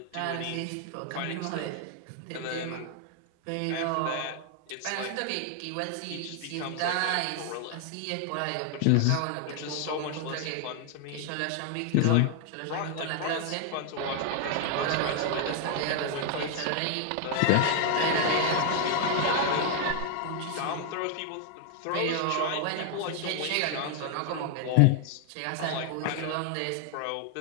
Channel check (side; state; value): both; different; correlation 0.00